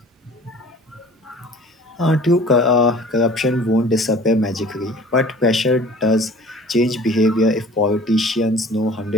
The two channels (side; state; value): both; normal; correlation 0.47